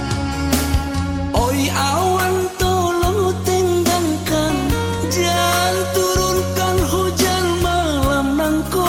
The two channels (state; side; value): identical; both; correlation 1.00